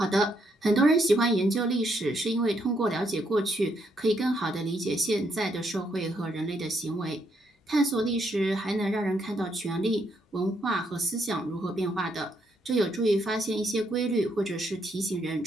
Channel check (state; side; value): normal; both; correlation 0.75